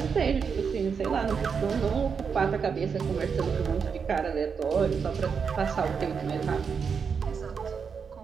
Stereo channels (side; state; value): left; quieter; 6.1 dB